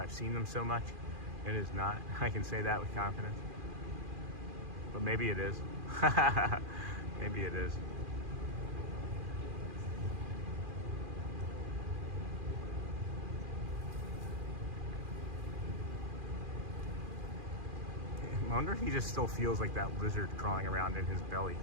seen them so much. It is not. I can say that with confidence. But maybe it is. Maybe it is. I wonder if he just still feels like that lizard crawling around in his belly.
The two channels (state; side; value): late; left; 2.4 ms